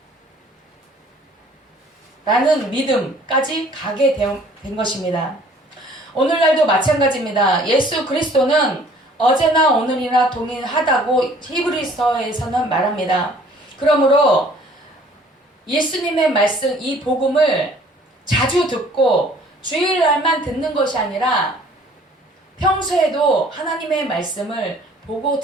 라는 믿음까지 가게 된 것입니다. 오늘날도 마찬가지입니다. 예수 그리스도는 어제나 오늘이나 동일하다고 히브리서에서는 말합니다. 그러므로 예수님의 말씀, 이 복음을 자주 듣고 주일날만 듣는 것이 아니라 평소에도 하나님의 말씀을 보고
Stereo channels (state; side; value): normal; both; correlation 0.55